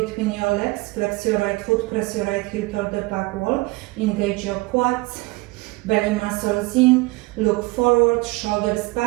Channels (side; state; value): left; quieter; 23.2 dB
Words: your legs, flex your right foot, press your right heel toward the back wall, engage your quads, belly muscles in, look forward, shoulders